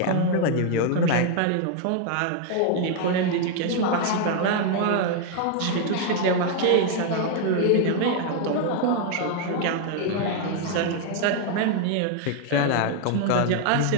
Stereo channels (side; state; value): both; different; correlation 0.00